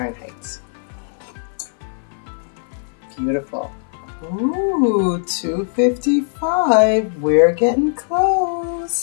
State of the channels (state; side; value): silent; right; 59 dB below the other